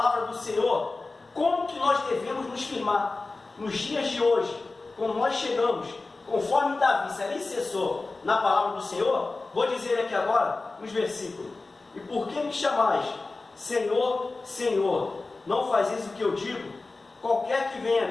do Senhor, como que nós devemos nos firmar nos dias de hoje, quando nós chegamos, conforme Davi se alicerçou na palavra do Senhor. Vou dizer aqui agora, nos versículos, e por que me chamais, Senhor, Senhor, não fazeis o que eu digo? Qualquer que venha a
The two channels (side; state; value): right; quieter; 3.5 dB